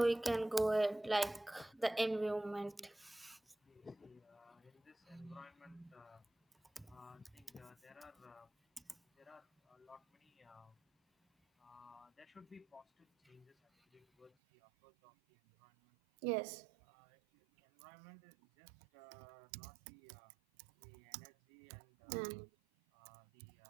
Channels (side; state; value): left; drops out; at 14.3 s